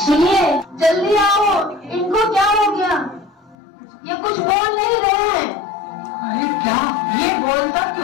सुनिए, जल्दी आओ। इनको क्या हो गया? ये कुछ बोल नहीं रहे हैं। अरे क्या ये बोलता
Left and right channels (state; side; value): drops out; right; at 3.6 s